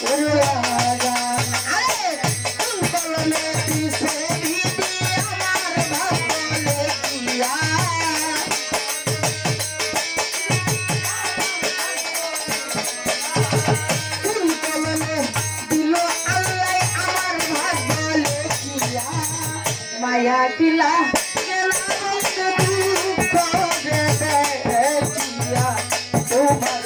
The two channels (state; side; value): identical; both; correlation 1.00